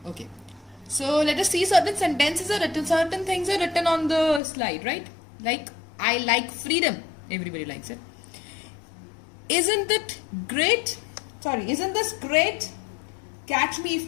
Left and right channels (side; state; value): right; drops out; at 4.4 s